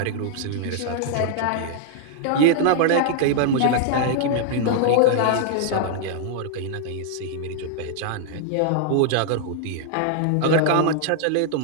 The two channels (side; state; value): both; different; correlation -0.01